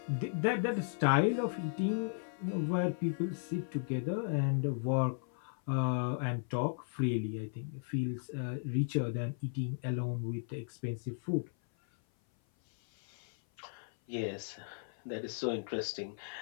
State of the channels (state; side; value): silent; right; 54 dB below the other